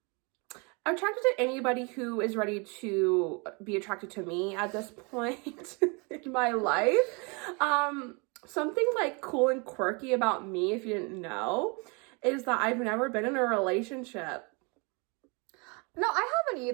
attracted to anybody who is ready to be attracted to me at this point in my life. Something like cool and quirky about me, if you didn't know, is that I've never been in a relationship. No, I haven't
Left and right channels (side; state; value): left; quieter; 31.2 dB